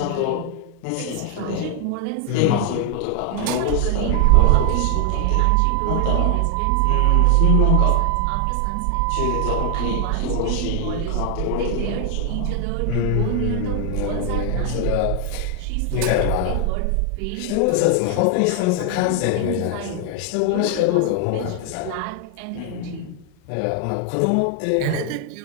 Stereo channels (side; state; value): both; different; correlation 0.00